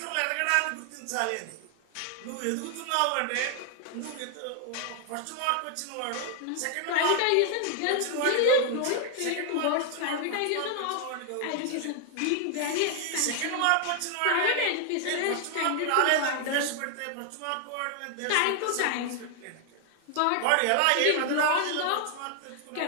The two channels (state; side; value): different; both; correlation 0.00